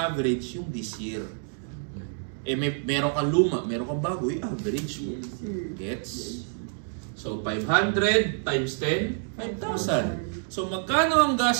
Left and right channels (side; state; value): left; silent; digital silence